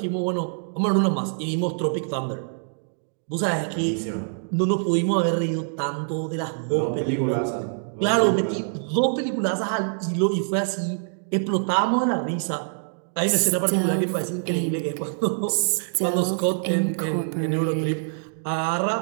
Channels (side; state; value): left; silent; digital silence